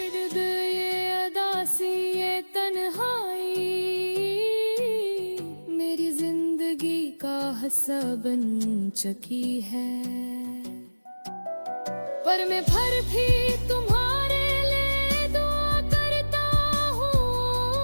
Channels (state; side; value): inverted; both; correlation -1.00